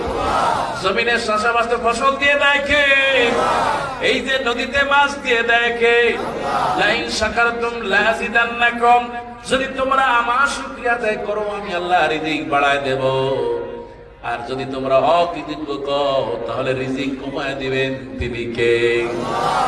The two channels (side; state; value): both; identical; correlation 1.00